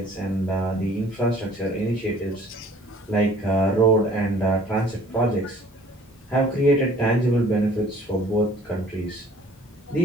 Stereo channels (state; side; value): normal; both; correlation 0.53